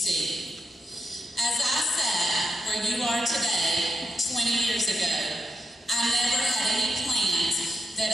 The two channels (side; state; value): both; normal; correlation 0.84